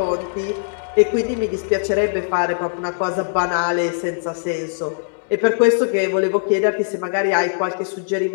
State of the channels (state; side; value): silent; right; digital silence